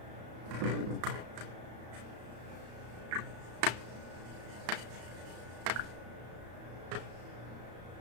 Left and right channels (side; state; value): left; late; 34 ms